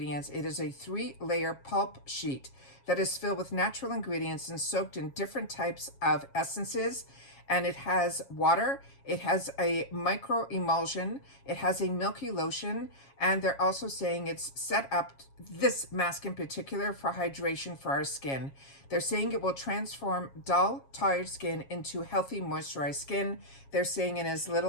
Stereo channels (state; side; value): late; right; 7.3 ms